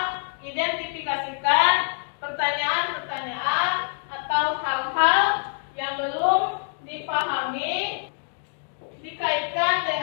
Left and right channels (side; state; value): right; silent; 61 dB below the other